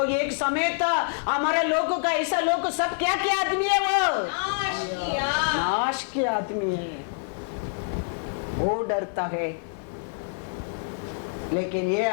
एक समय था हमारे लोगों का, ऐसा लोग सब क्या क्या आदमी है, वो नाश के आदमी है। वो डरता है, लेकिन ये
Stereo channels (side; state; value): right; silent; digital silence